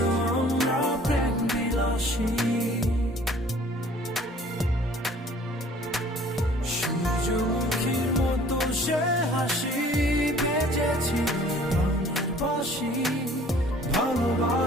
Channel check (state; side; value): normal; both; correlation 0.53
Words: আমরা প্রেম বিলাসী। সূর্যমুখীর মতো সে হাসি বেজেছি প্রাণের বাসি,